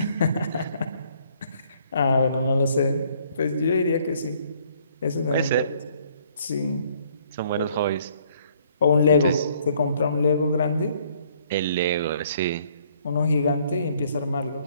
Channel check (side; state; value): both; inverted; correlation -0.63